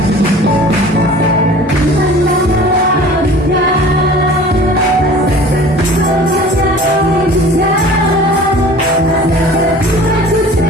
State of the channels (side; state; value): both; normal; correlation 0.44